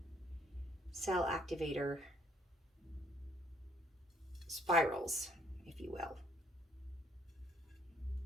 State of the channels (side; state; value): both; normal; correlation 0.65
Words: cell activator spirals, if you will.